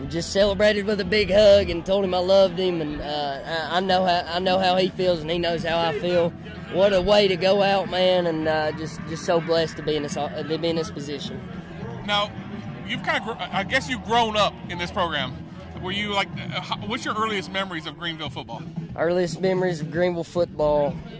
just celebrated with a big hug and told him I loved him, and I know how he feels, and he knows how I feel. What a way to go out, man, and just so blessed to be in this position. Now, you've I guess you've grown up in this program. Were you like, what's your earliest memories of Greenville football? Earliest memories of Greenville football,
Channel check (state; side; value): identical; both; correlation 1.00